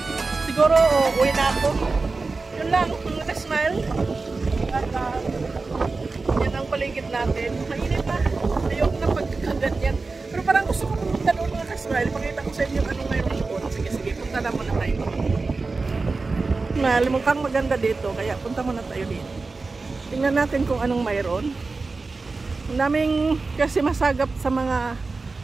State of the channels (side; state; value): left; quieter; 3.9 dB